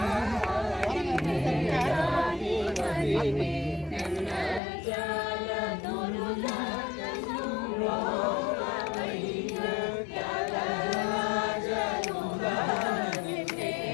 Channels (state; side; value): drops out; right; at 4.6 s